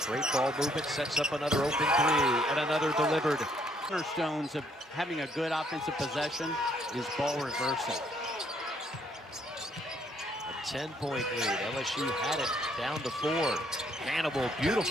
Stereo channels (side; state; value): both; normal; correlation 0.68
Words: Great ball movement, sets up another open 3, and another delivered. Cornerstones of having a good offensive possession is ball reversal. A 10-point lead. LSU had it down to 4. Hannibal,